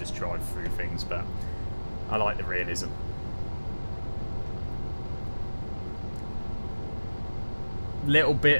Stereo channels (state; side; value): inverted; both; correlation -1.00